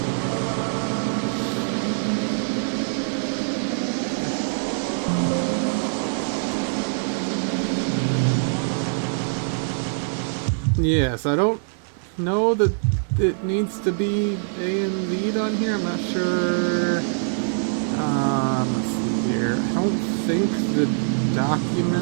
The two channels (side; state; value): left; silent; 63 dB below the other